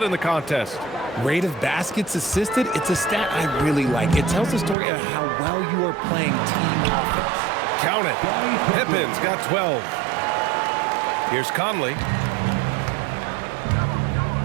in the contest. Rate of baskets assisted, it's a stat I really like. It tells the story of how well you are playing team offense. Count it. Pippin's got 12. Here's Conley.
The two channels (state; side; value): drops out; left; at 4.8 s